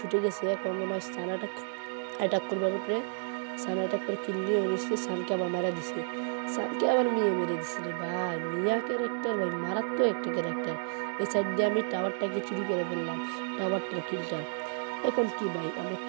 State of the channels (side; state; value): left; silent; digital silence